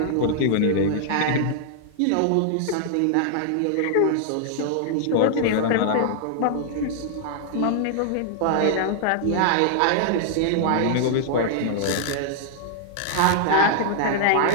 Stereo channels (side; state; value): both; different; correlation -0.01